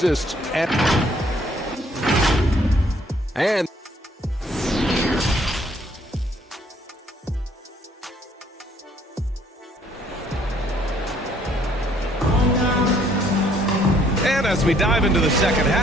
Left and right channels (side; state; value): both; normal; correlation 0.64